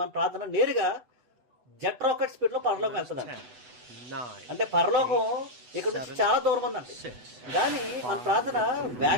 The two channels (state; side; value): late; left; 8.1 ms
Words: ప్రార్థన నేరుగా జెట్ రాకెట్ స్పీడ్ లో పరలోకం వెళ్తుందండి. అంటే పరలోకం ఇక్కడ నుంచి చాలా దూరం ఉందండి, కానీ మన ప్రార్థన